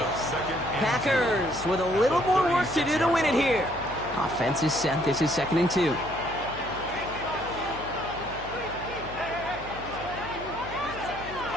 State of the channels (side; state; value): left; noise; hum, 15 dB below the sound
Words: Packers with a little more work to do to win it here. Offense is set. This is 2nd and 2.